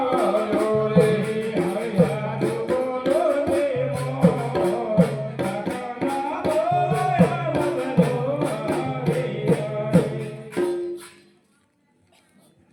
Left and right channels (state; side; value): identical; both; correlation 1.00